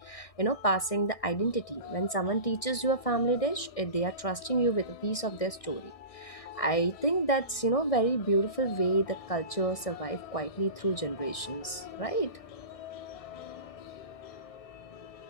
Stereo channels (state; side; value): late; right; 1.6 ms